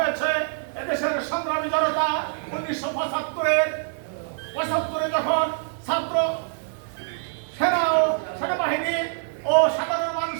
এদেশের সংগ্রামী জনতা 1975-এ যখন ছাত্র সেনা ও সেনাবাহিনী ও সাধারণ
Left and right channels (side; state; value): left; silent; digital silence